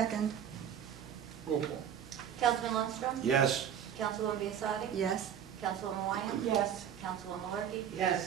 Roll call. Councilman Lundstrom? Yes. Councilwoman Biassadi? Yes. Councilwoman Wyatt? Yes. Councilwoman Malarkey?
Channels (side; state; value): left; quieter; 9.0 dB